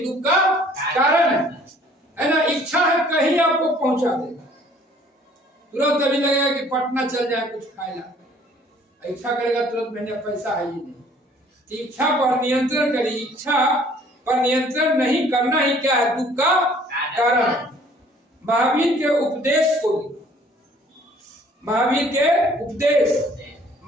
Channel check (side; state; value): both; normal; correlation 0.56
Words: का कारण है ना। इच्छा है कहीं आपको पहुंचा देगा, तुरंत अभी लगेगा कि पटना चल जाए कुछ खाएगा, इच्छा करेगा तुरंत मैंने पैसा है ही नहीं। इच्छा पर नियंत्रण करिए, इच्छा पर नियंत्रण नहीं करना ही क्या है दुख का कारण। महावीर के उपदेश को, महावीर के उपदेश,